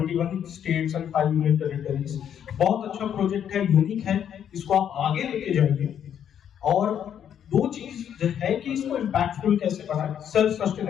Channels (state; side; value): quieter; right; 9.2 dB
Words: states and 5 union territories. बहुत अच्छा प्रोजेक्ट है, यूनिक है, इसको आप आगे लेके जाएंगे। और दो चीज है कि इसको इम्पैक्टफुल कैसे बनाए, सेल्फ